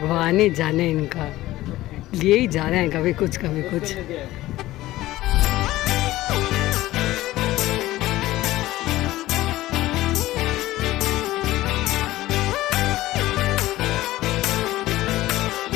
ही जाने इनका। लिए ही जा रहे हैं कभी कुछ कभी कुछ।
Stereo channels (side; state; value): right; quieter; 16.5 dB